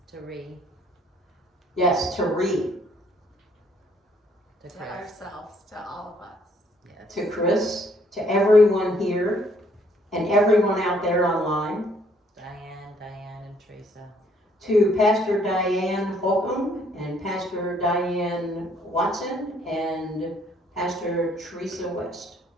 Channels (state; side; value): normal; both; correlation 0.65